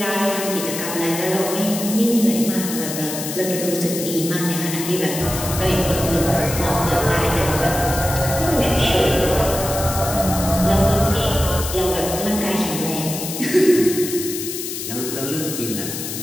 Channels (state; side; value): noise; left; hiss, 6 dB below the sound